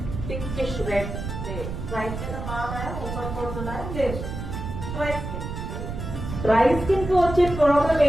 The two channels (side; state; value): right; noise; rumble, 6 dB below the sound